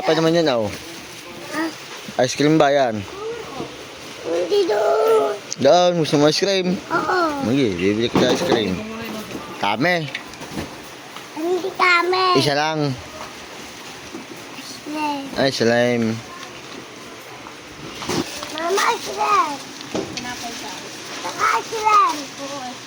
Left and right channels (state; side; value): identical; both; correlation 1.00